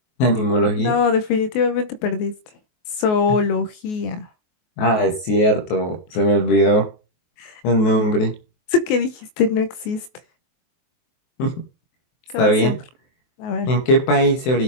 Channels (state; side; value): late; right; 24 ms